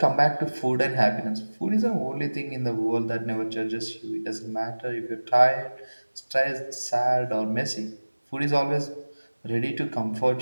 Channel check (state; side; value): inverted; both; correlation -1.00